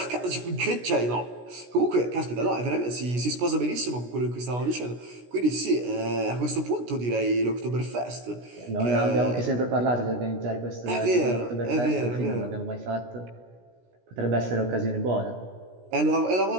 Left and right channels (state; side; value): late; left; 16 ms